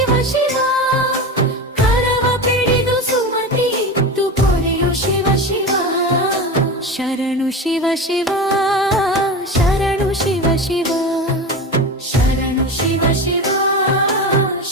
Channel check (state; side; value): normal; both; correlation 0.25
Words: ಶಿವ ಕರವ ಪಿಡಿದು ಸುಮತಿ ಇತ್ತು ಪೊರೆಯೋ ಶಿವ ಶಿವ ಶರಣು ಶಿವ ಶಿವ ಶರಣು ಶಿವ ಶಿವ ಶರಣು ಶಿವ ಶಿವ